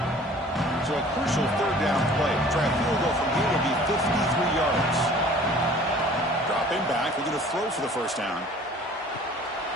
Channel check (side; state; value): both; normal; correlation 0.49